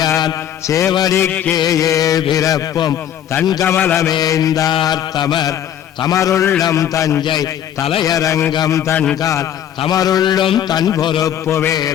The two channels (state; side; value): quieter; right; 10.3 dB